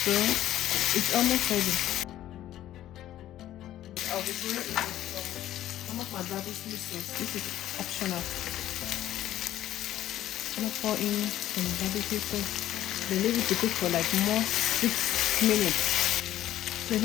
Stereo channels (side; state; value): right; quieter; 13.0 dB